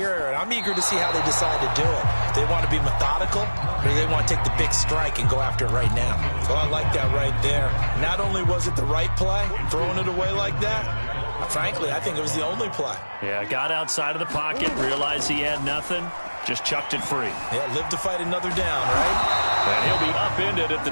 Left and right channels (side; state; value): both; inverted; correlation -1.00